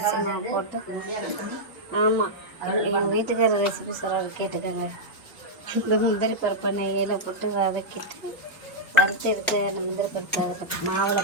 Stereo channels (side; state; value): both; normal; correlation -0.07